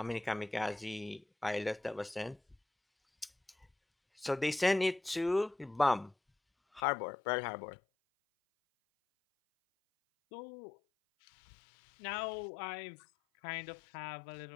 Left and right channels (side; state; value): right; drops out; at 6.8 s